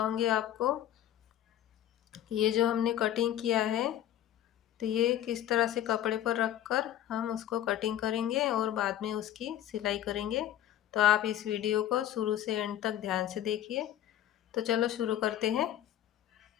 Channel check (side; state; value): right; quieter; 11.9 dB